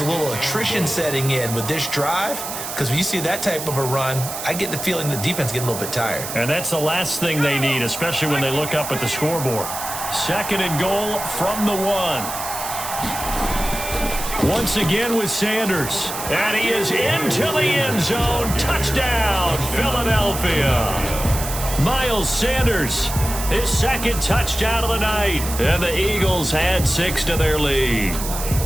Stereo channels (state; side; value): noise; right; hiss, 7 dB below the sound